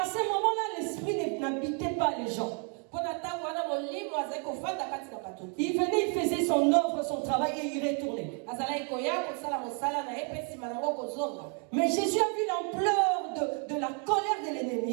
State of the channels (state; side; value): quieter; left; 39.1 dB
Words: ce moment-là, l'esprit n'habitait pas les gens. Il venait, il faisait son œuvre, son travail et il retournait. Mais Jésus a vu l'ampleur de la colère de